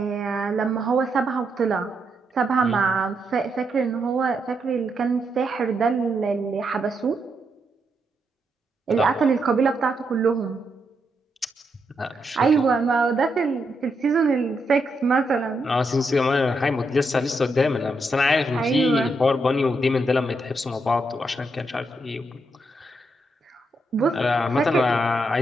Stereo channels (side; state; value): both; normal; correlation 0.81